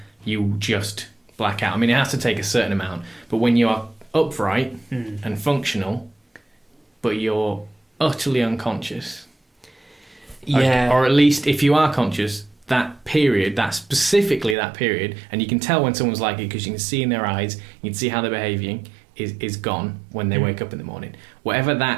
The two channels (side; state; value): left; drops out; at 14.6 s